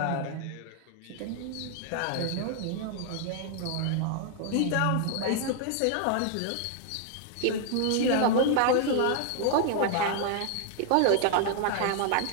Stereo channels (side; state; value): both; different; correlation 0.00